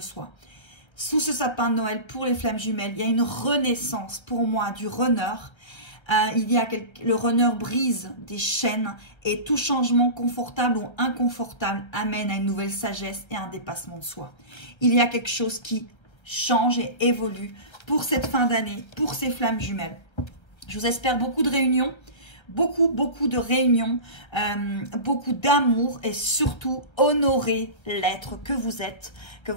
Sous ce sapin de Noël, pour les flammes jumelles, il y a une renaissance pour moi du runner. Le runner brise des chaînes et tout changement confortable ou inconfortable amène à une nouvelle sagesse et un dépassement de soi. Il y a quelque chose qui change et évolue pour cette fin d'année, pour ces flammes jumelles. Je vous espère beaucoup de réunions, beaucoup de réunions, beaucoup d'amour et surtout honorer l'être que vous êtes. Que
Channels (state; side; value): late; right; 1.4 ms